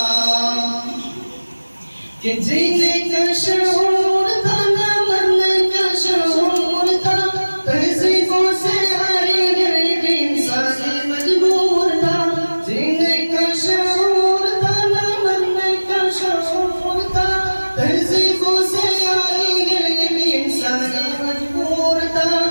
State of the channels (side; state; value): both; inverted; correlation -1.00